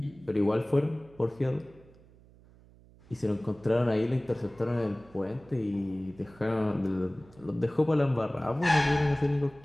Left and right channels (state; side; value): noise; right; hum, 25 dB below the sound